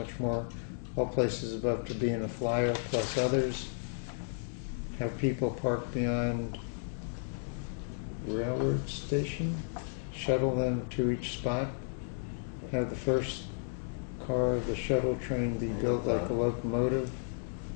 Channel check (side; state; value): right; silent; digital silence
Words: more. All places above to be in a flyer, plus others. Have people park beyond railroad station. Shuttle them to each spot. Have the first car of the shuttle train be built like a locomotive.